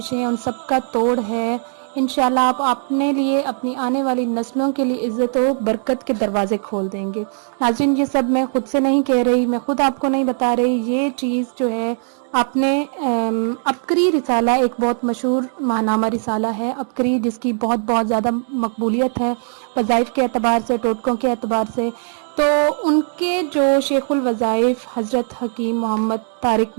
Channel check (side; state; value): left; silent; 66 dB below the other